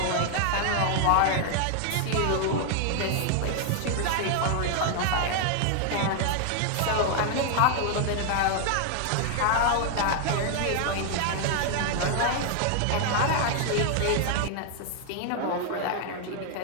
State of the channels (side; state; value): both; different; correlation 0.00